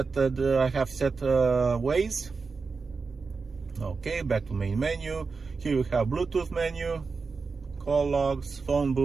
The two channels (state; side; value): quieter; left; 4.6 dB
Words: Waze. Okay, back to main menu. Here we have Bluetooth menu, call logs, phone